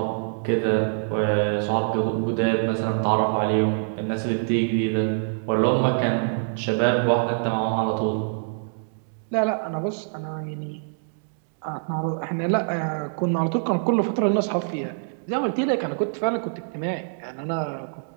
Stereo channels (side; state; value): left; silent; digital silence